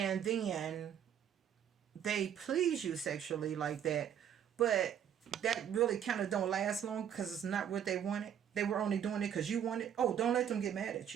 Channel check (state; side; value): quieter; left; 9.1 dB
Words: then they please you sexually like that, but that really kind of don't last long because it's not what they wanted? They were only doing it because you wanted. Oh, don't let them get mad at